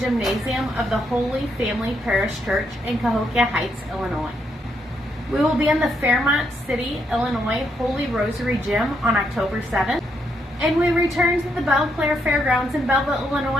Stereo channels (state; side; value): normal; both; correlation 0.77